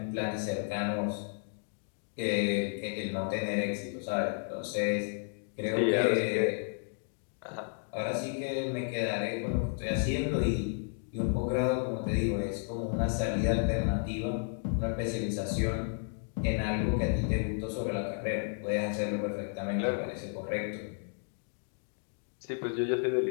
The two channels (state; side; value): silent; right; 56 dB below the other